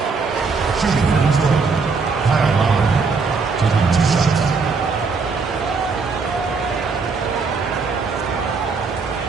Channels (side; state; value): left; quieter; 4.7 dB